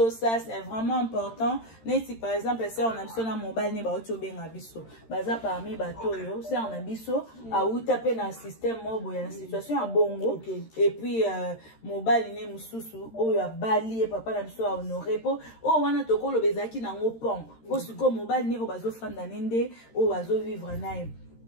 ça c'est vraiment important neti par exemple si on a biso na mobile ne ba obenga biso baza parmi bato yo si on a biso auta pe na système mobo ya situation ya bongo et puis mobile ne mususu oyo abali papa na biso a honorer po o wana tokolo bezaki na ngopon po siko mobile ne o bazo fanda nende o bazo vivre nae.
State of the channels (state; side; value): late; right; 13 ms